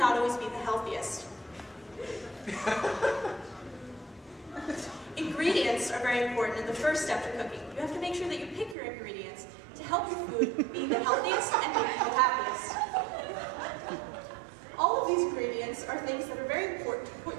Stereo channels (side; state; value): left; drops out; at 8.8 s